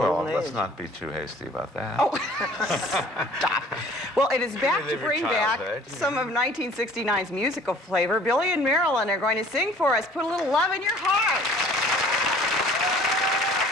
Golden let's age. not be too hasty about that. Oh, stop. Well, it is back to Relive your bring back childhood. some of 1969's musical flavor. Billy and Marilyn are going to sing for us. Put a little love in your heart.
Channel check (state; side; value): normal; both; correlation 0.52